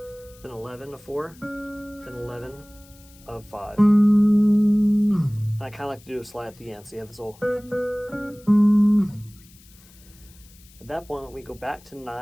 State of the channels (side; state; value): left; noise; hiss, 25 dB below the sound